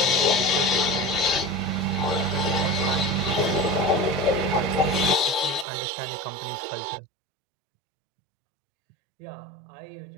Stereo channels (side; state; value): left; drops out; at 5.7 s